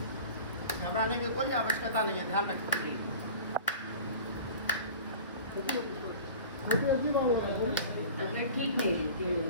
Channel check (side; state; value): both; inverted; correlation -0.40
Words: घबराने की कोई आवश्यकता नहीं है, ध्यान रखो। ठीक है। छोटी अर्जी बाबा बोल। तबीयत ठीक नहीं रहती